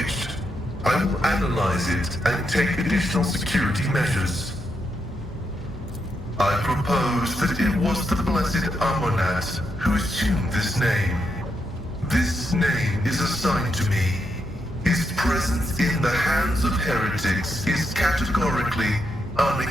I will analyze it and take additional security measures. I propose that it was the Blessed Amonat who assumed this name. This name is assigned to me. His presence in the hands of heretics is categorically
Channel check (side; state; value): both; normal; correlation 0.82